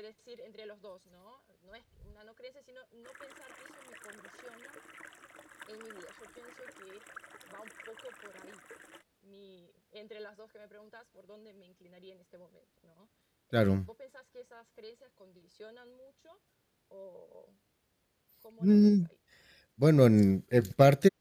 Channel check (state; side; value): identical; both; correlation 1.00